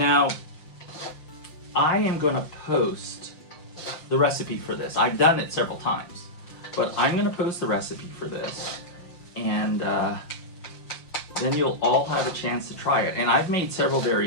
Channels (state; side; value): late; right; 5.7 ms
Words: I am going to post the recipe for this. I've done it several times, but I'm going to post the recipe for this, and then you'll all have a chance to try it. And I've made several